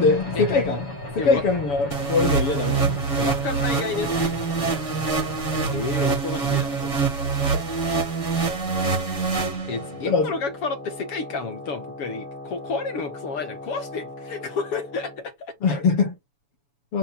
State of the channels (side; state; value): right; late; 7.1 ms